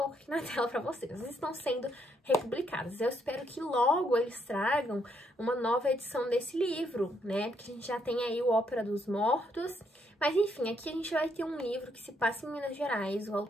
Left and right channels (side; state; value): both; normal; correlation 0.74